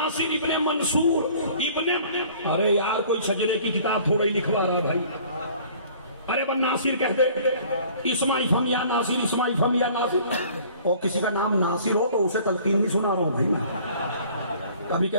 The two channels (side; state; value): both; inverted; correlation -0.52